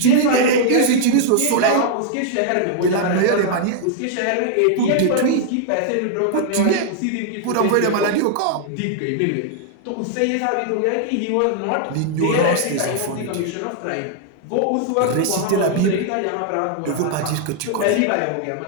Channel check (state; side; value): different; both; correlation -0.01